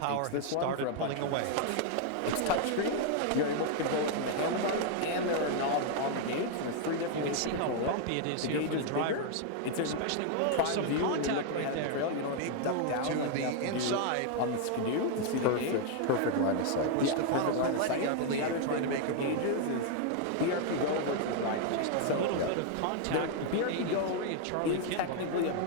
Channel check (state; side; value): different; both; correlation 0.00